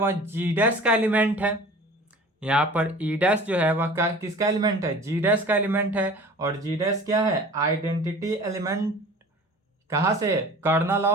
जी डैश का एलिमेंट है। यहाँ पर ई डैश जो है वह किसका एलिमेंट है, जी डैश का एलिमेंट है, और जी डैश क्या है, आइडेंटिटी एलिमेंट। कहाँ से, कर्नल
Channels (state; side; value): normal; both; correlation 0.43